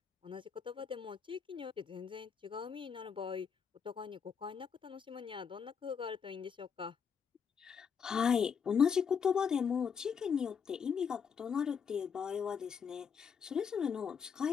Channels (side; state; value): right; quieter; 6.6 dB